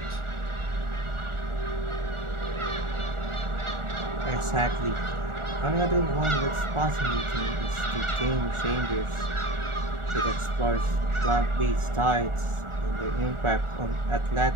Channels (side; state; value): left; late; 1.4 ms